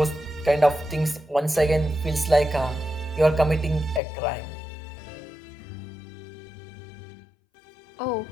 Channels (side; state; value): right; drops out; at 4.0 s